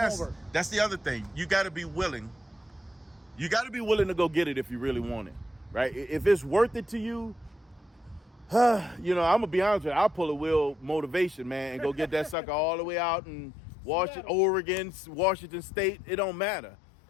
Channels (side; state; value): right; drops out; at 12.4 s